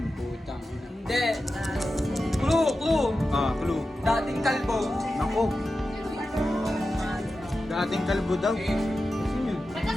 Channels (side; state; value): both; normal; correlation 0.92